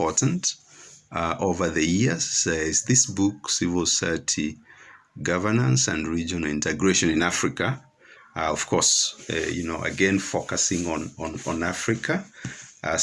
over the years is this book, Civil Society Governance and Regional Integration in Africa. Of course, again, focusing on Africa.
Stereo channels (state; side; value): identical; both; correlation 1.00